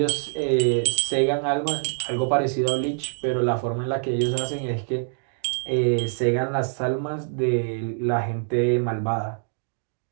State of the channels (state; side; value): silent; left; digital silence